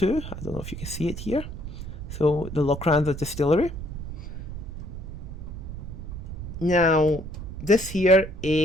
I don't know if you can see it here. So, the Lochranza distillery. Now, this here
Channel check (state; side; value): noise; right; rumble, 8 dB below the sound